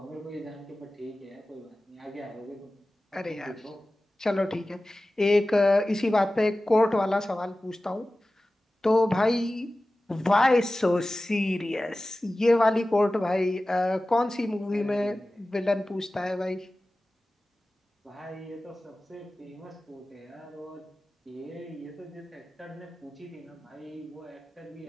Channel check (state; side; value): normal; both; correlation 0.96